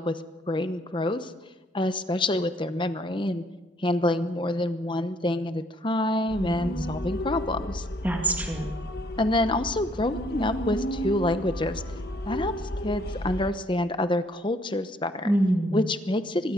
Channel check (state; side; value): normal; both; correlation 0.66